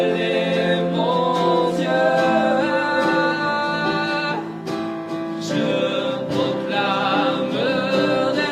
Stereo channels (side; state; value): both; identical; correlation 1.00